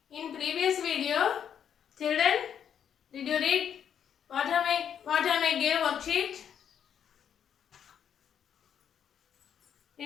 In previous video, children, did you read what am I gave worksheet?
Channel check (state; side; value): quieter; right; 8.6 dB